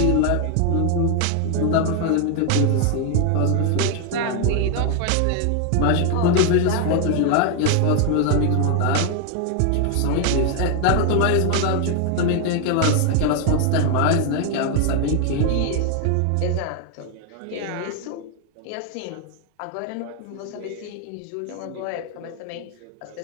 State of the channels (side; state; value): both; different; correlation 0.00